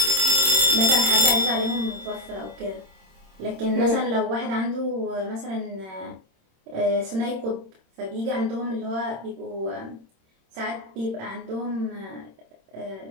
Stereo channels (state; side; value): late; left; 26 ms